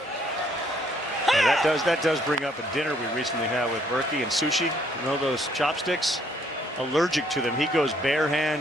Yeah, that does bring up a dinner we recently had with Berkey and sushi. You know those chopsticks? Allergic to them. He goes bare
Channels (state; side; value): normal; both; correlation 0.66